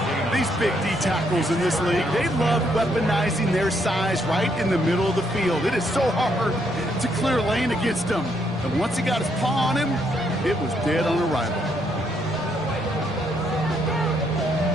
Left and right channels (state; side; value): normal; both; correlation 0.73